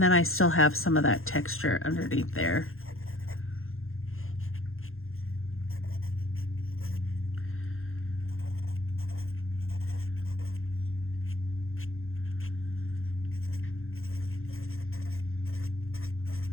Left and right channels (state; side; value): late; right; 0.61 ms